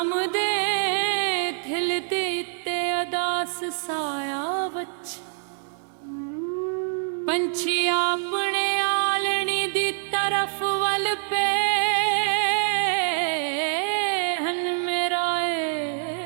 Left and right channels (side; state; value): left; silent; 62 dB below the other